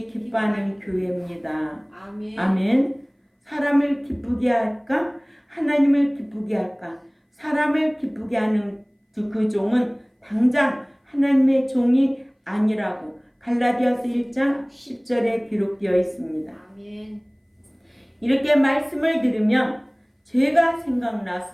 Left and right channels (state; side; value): identical; both; correlation 1.00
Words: 기뻐하는 교회입니다. 아멘. 아멘. 사람을 기쁘게 할까? 하나님을 기쁘게 할까? 사람을 기쁘게 하는 그 종은 당장 하나님의 종이 아니라고 갈라디아서 1장 10절에 기록되어 있습니다. 아멘. 이렇게 말씀을 들으면 죄가